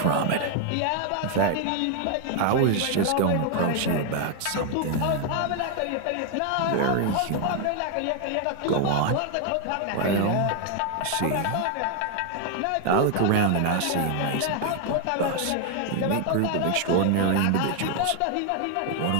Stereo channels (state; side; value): different; both; correlation 0.00